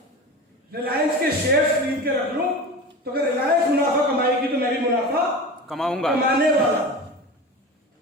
रिलायंस के शेयर्स खरीद के रख लूं, तो अगर रिलायंस मुनाफा कमाएगी तो मैं भी मुनाफा कमाऊंगा, कमाने वाला।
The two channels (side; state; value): both; normal; correlation 0.30